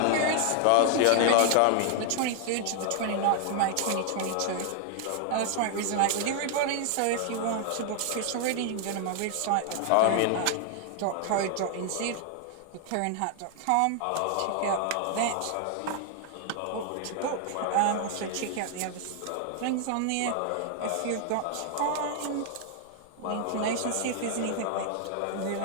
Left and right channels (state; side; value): different; both; correlation 0.00